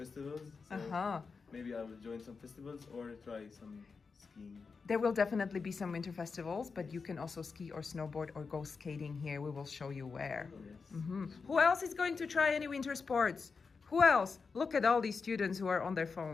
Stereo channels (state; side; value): quieter; right; 4.9 dB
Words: So maybe I will join some festivals or try some skiing. There will definitely be some winter festivals, but you can also ski or snowboard or go skating here. We will show you where. Yes. Who else is going to try any winter sports? Who else? Look at all these students who are on their